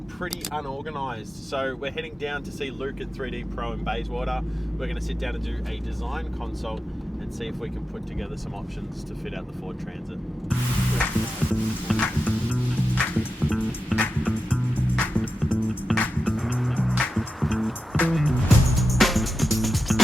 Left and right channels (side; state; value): both; normal; correlation 0.91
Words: pretty unorganized. So we're heading down to see Luke at 3D Pro in Bayswater. We're going to sit down and do a design consult and see if we can put together some options to fit out the Ford Transit.